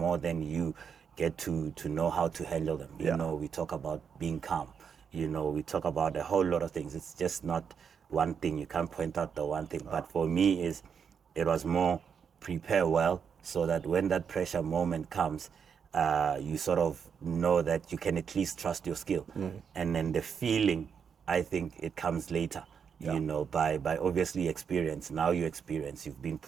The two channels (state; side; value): quieter; left; 6.9 dB